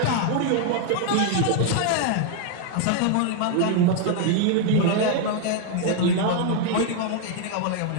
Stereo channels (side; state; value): both; different; correlation 0.00